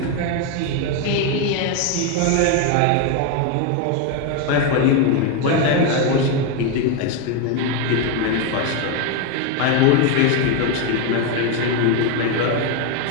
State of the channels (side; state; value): both; different; correlation 0.02